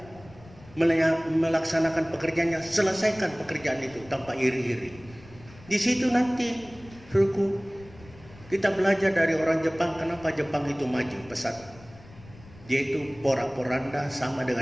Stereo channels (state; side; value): noise; left; rumble, 21 dB below the sound